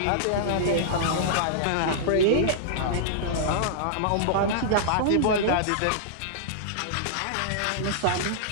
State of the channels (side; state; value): both; different; correlation -0.02